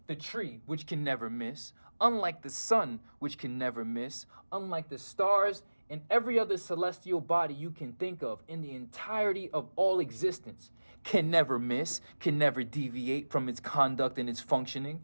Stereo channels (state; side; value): inverted; both; correlation -1.00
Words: the tree, which can never miss, unlike the sun, which can never miss, unlike the stars and every other celestial body you can think of in the entirety of all existence, can never miss, can never deviate from its conduct and its functioning,